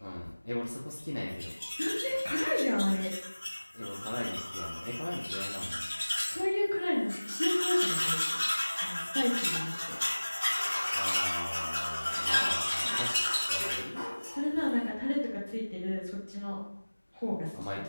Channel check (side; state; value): both; inverted; correlation -1.00